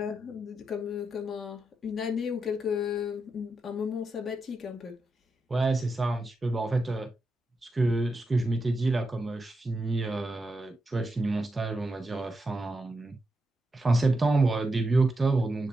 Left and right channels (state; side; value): normal; both; correlation 0.86